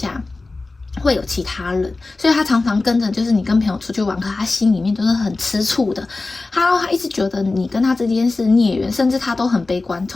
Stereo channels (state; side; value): quieter; right; 3.4 dB